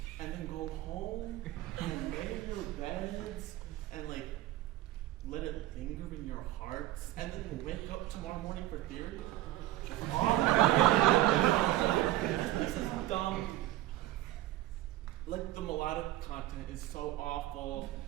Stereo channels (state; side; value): quieter; left; 15.5 dB